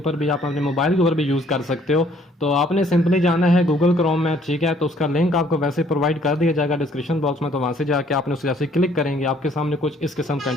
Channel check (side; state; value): both; normal; correlation 0.62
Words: भी आप अपने मोबाइल के ऊपर भी यूज़ कर सकते हो। तो आपने सिंपली जाना है गूगल क्रोम में, ठीक है। तो उसका लिंक आपको वैसे प्रोवाइड कर दिया जाएगा डिस्क्रिप्शन बॉक्स में। तो वहाँ से जाके आपने उसे जैसे क्लिक करेंगे आपके सामने कुछ इस किस्म का